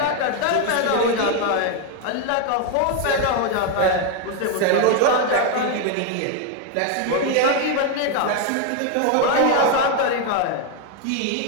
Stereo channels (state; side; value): different; both; correlation 0.01